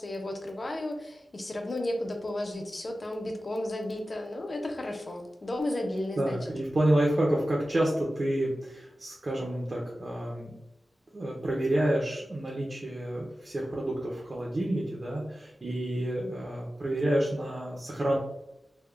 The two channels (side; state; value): both; normal; correlation 0.94